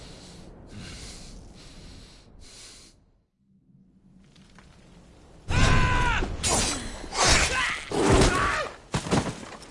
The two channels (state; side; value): identical; both; correlation 1.00